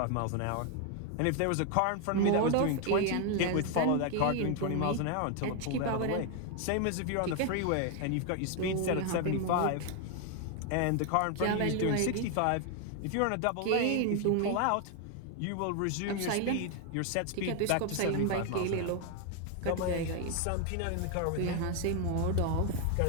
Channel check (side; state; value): both; different; correlation 0.00